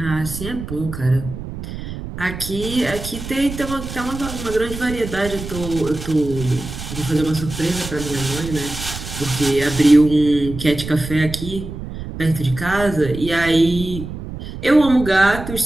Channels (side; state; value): right; noise; rumble, 9 dB below the sound